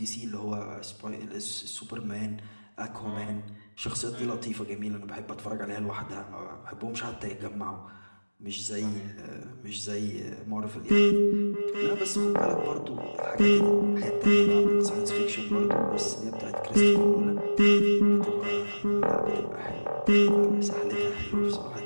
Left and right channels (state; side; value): inverted; both; correlation -1.00